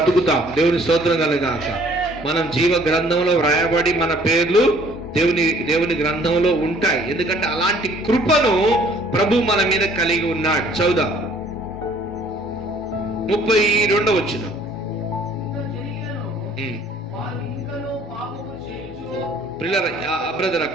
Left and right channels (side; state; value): both; normal; correlation 0.57